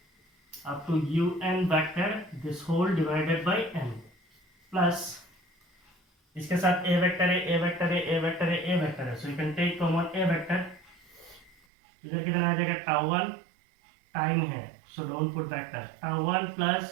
up to un vector this whole divided by n plus इसके साथ a वेक्टर है a वेक्टर है a वेक्टर है a वेक्टर है. So you can take common a vector. इधर कितना आ जाएगा? tau 1 टाइम है so don't put vector. tau 1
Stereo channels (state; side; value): drops out; left; at 11.6 s